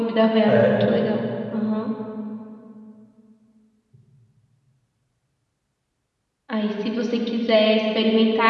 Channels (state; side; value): identical; both; correlation 1.00